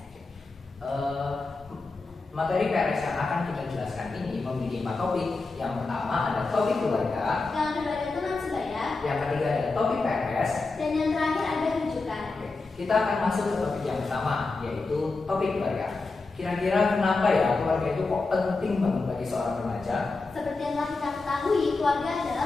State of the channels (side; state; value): right; quieter; 3.7 dB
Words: Materi PRS yang akan kita jelaskan ini memiliki 4 topik. Yang pertama ada topik keluarga, Yang kedua ada teman sebaya, yang ketiga ada topik PRS, dan yang terakhir ada rujukan. Kita akan masuk ke topik yang pertama, yaitu topik keluarga. Kira-kira kenapa ya keluarga itu kok penting banget bagi seorang remaja? Seperti yang telah kita ketahui, keluarga